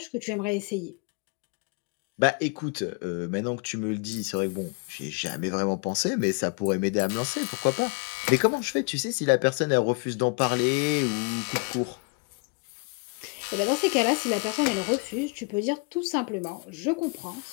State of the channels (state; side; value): quieter; right; 31.7 dB